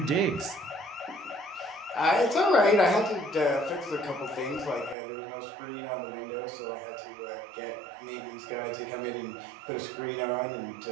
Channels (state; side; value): drops out; left; at 5.0 s